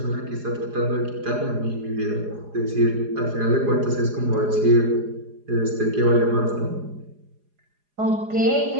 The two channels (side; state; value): left; late; 4.8 ms